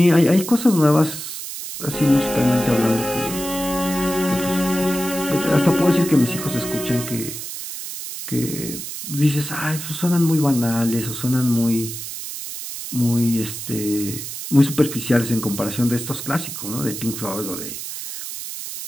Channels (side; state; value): right; noise; hiss, 8 dB below the sound